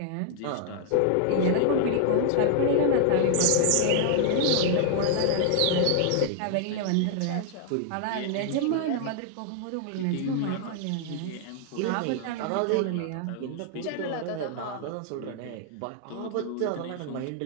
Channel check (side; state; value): both; different; correlation 0.00